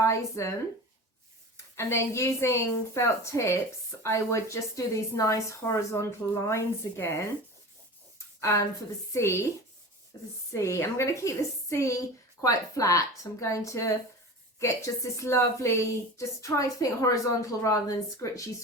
and then using felt tips, I would just do these nice horizontal lines again for the sea. I'm going to keep the sea quite flat. I'm going to get just this lovely, just try to think horizontal rather than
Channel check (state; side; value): normal; both; correlation 0.33